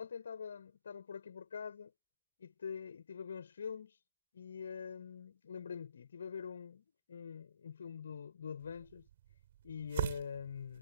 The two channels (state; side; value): inverted; both; correlation -0.70